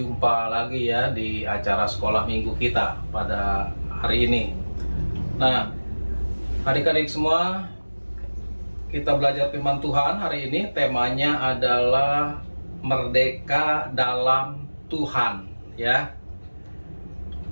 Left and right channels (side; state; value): both; inverted; correlation -1.00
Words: lagi ya di acara sekolah minggu kita pada hari ini. Nah, adik-adik semua, kita belajar firman Tuhan hari ini. Temanya adalah merdeka dalam Tuhan ya.